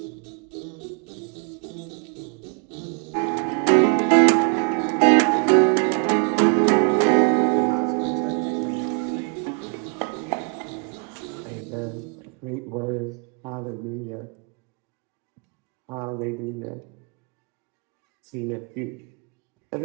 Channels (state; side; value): quieter; left; 39.1 dB